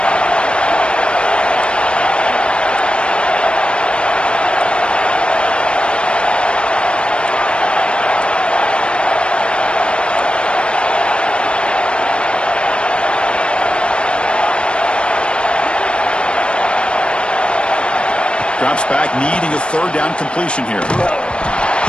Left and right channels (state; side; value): late; right; 0.056 ms